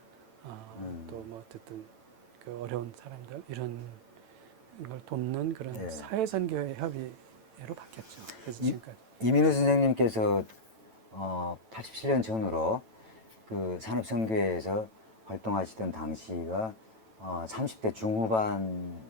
또 뭐 어쨌든 그 어려운 사람들 이런 걸 돕는 그런 예. 사회선교회 협의회로 바뀌었죠. 그래서 이- 지금까지. 이민우 선생님께서 87년 전으로 그 산업선교회에서 활동하시던 당시가 30대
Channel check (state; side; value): late; left; 9.1 ms